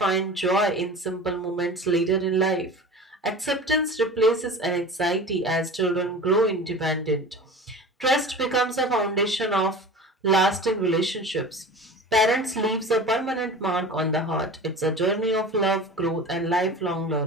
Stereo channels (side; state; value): both; normal; correlation 0.36